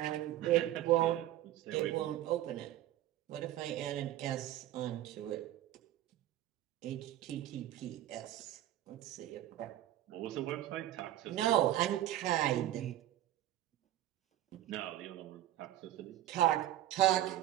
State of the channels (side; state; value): left; quieter; 13.5 dB